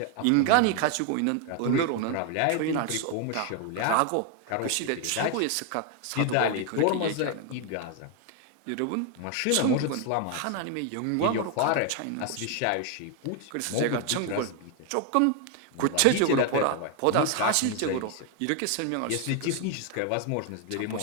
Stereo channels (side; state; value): both; different; correlation 0.01